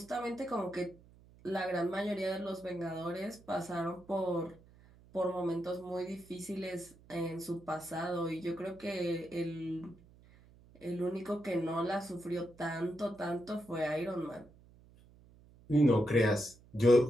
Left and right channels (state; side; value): noise; right; hum, 25 dB below the sound